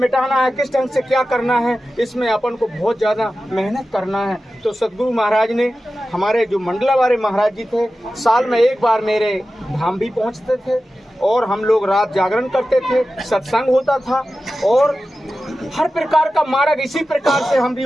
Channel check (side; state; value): both; normal; correlation 0.94